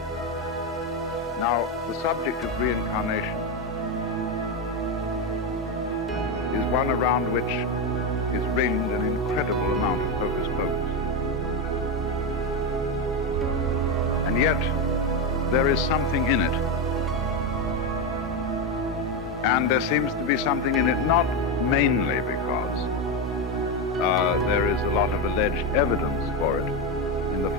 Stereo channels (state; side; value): normal; both; correlation 0.11